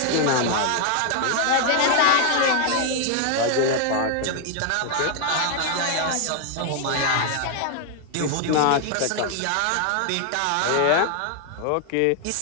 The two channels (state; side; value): different; both; correlation 0.00